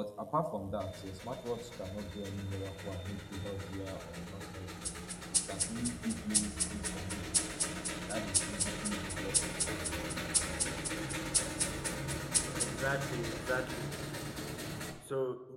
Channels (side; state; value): both; identical; correlation 1.00